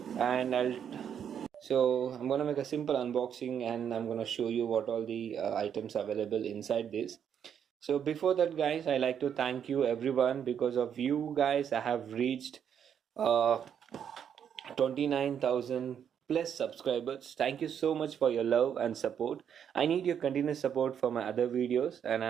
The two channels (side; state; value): left; quieter; 8.4 dB